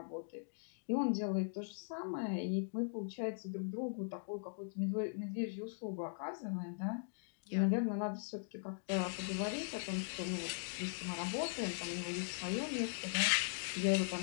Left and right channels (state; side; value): silent; right; digital silence